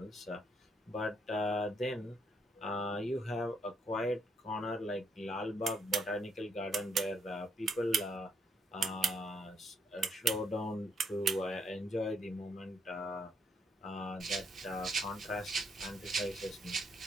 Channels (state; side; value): normal; both; correlation 0.72